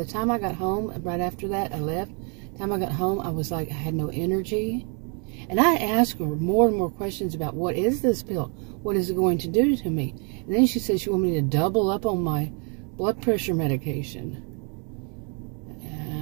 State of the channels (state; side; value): quieter; left; 36.7 dB